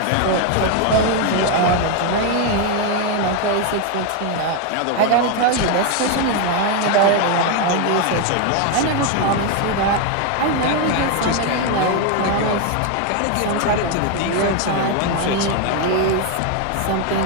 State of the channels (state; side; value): different; both; correlation 0.01